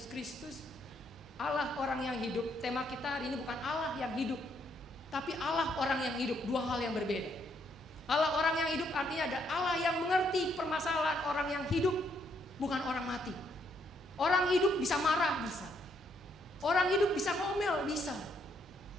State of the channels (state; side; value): normal; both; correlation 0.73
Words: Kristus, Allah orang yang hidup. Tema kita hari ini bukan Allah yang hidup, tapi Allah orang yang hidup. Dua hal yang berbeda. Allah orang yang hidup artinya ada Allah yang mengerti permasalahan orang yang hidup, bukan orang mati. Orang hidup bisa marah, bisa. Orang hidup bisa ngomel, bisa.